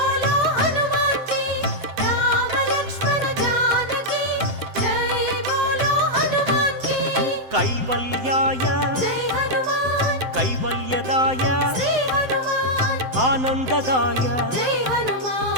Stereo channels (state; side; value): late; left; 7.8 ms